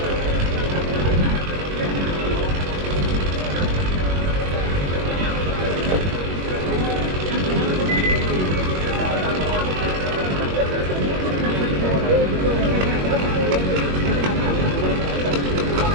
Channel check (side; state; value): left; late; 21 ms